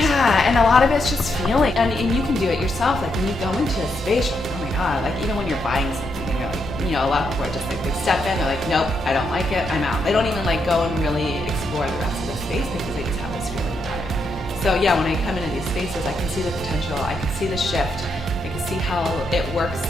and a lot of it's just feeling, and you can do it yourself. When you go into a space, you're like, oh my God, even when you're buying something and you're a lot of people are just they step in, they're like, nope, I don't like it, I'm out. They don't even go and really explore the rest of the space because they just have this feeling about it. So yeah, when I come into these spaces, I can see the potential, I can see the shift, I can see how it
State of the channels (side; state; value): both; normal; correlation 0.80